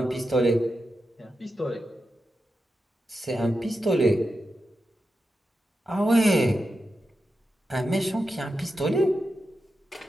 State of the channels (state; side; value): normal; both; correlation 0.89